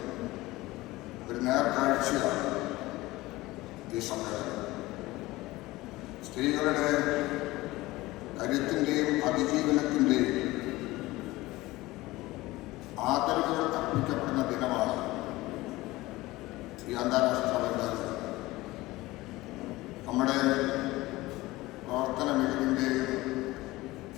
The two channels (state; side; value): quieter; right; 19.2 dB